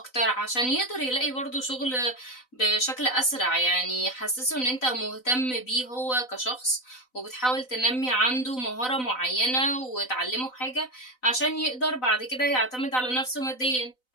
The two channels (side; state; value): right; late; 4.0 ms